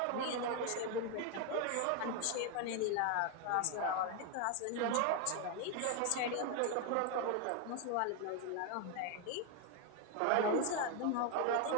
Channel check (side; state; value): both; different; correlation 0.01